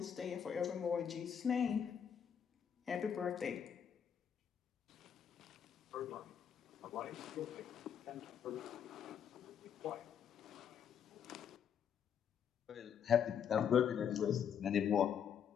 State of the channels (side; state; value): right; quieter; 8.1 dB